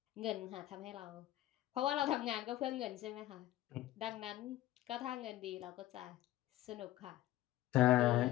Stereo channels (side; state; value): right; quieter; 15.0 dB